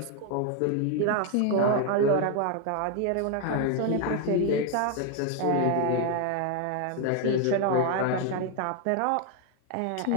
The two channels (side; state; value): both; different; correlation 0.01